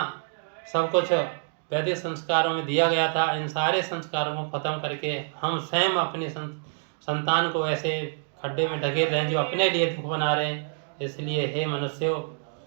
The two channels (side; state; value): left; silent; digital silence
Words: सब कुछ वैदिक संस्कारों में दिया गया था, इन सारे संस्कारों को खत्म करके हम स्वयं अपनी संतान को ऐसे खड्डे में ढकेल रहे हैं जो अपने लिए दुख बना रहे हैं। इसलिए हे मनुष्यों,